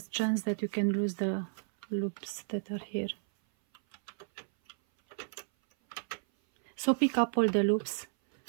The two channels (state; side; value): silent; left; 56 dB below the other